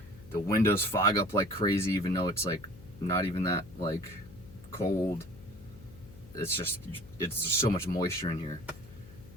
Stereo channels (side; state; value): left; noise; hum, 19 dB below the sound